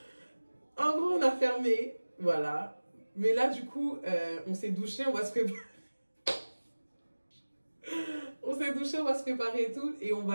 en gros, on a fermé, voilà. Mais là, du coup, on s'est douché, on va se préparer. On s'est douché, on va se préparer et tout. Et on va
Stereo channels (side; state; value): both; inverted; correlation -1.00